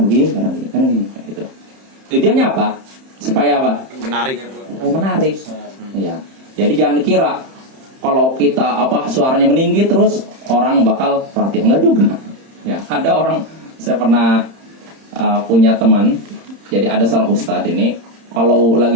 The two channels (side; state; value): left; late; 31 ms